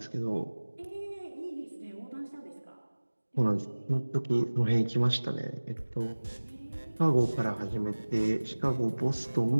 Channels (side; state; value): both; inverted; correlation -1.00